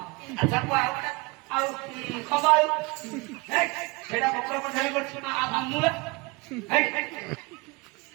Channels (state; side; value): quieter; left; 26.0 dB